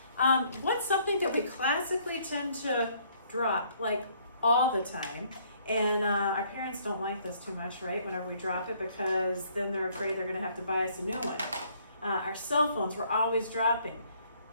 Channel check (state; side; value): inverted; both; correlation -0.64